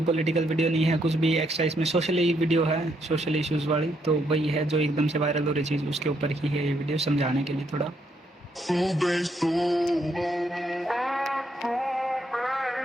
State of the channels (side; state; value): both; normal; correlation 0.74